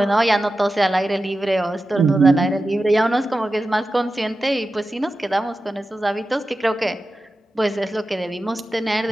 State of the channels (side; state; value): both; normal; correlation 0.93